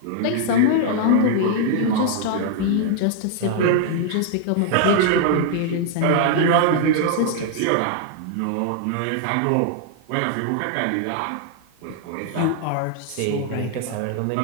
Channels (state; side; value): different; both; correlation 0.00